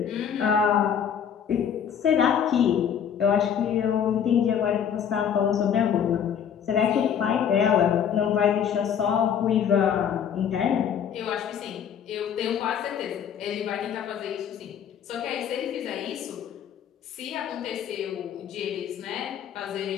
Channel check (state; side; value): quieter; right; 8.3 dB